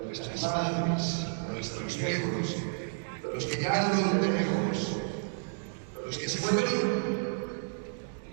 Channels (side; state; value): left; silent; digital silence